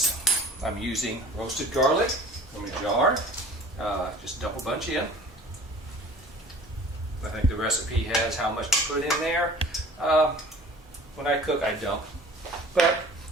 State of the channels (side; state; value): both; normal; correlation 0.45